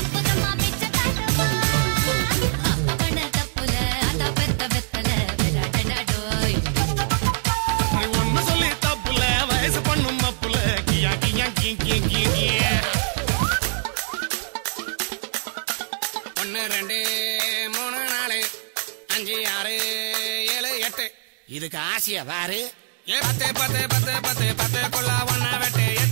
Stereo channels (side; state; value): left; silent; 63 dB below the other